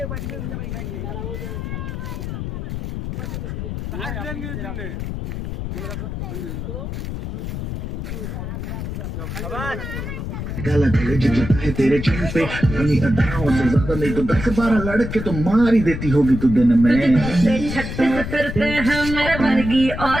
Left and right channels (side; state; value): left; noise; rumble, 5 dB below the sound